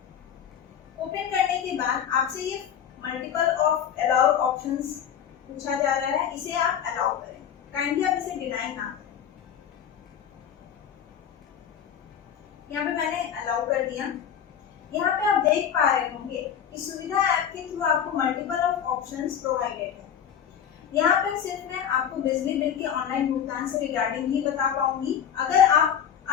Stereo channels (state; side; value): quieter; right; 8.7 dB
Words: ओपन करने के बाद आपसे ये मल्टीपल ऑफ अलाउ ऑप्शंस पूछा जा रहा है, इसे आप अलाउ करें। काइंडली आप इसे डिनाई ना करें। यहाँ पे मैंने अलाउ कर दिया। यहाँ पे आप देख पा रहे होंगे कि सुविधा ऐप के थ्रू आपको मल्टीपल ऑफ ऑप्शंस प्रोवाइडेड है। यहाँ पर सिर्फ मैं आपको बिजली बिल के ऑनलाइन भुगतान से रिगार्डिंग ही बता पाऊंगी। अगर आप